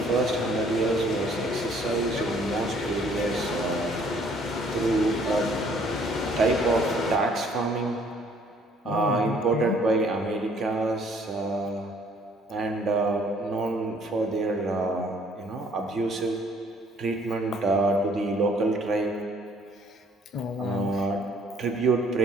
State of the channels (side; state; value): both; normal; correlation 0.60